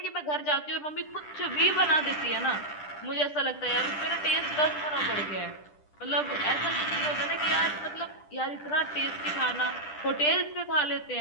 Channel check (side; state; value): right; late; 10 ms